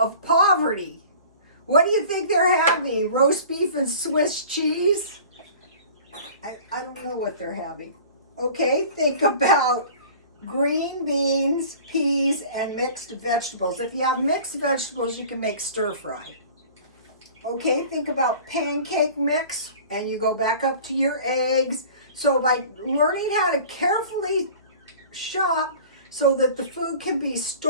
of poverty. What do you think they're having? Roast beef and Swiss cheese? I don't know what they're having. Okay, think about green beans, peas, and mixed vegetables. If you have mixed vegetables, you can make stir fry. Okay, think about pancake mix, and you go back up to your eggs. So by learning how to carefully shop so that the food can be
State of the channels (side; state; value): both; inverted; correlation -0.44